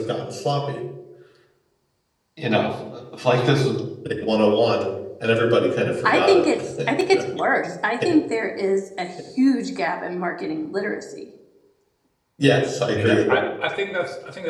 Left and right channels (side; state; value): both; identical; correlation 1.00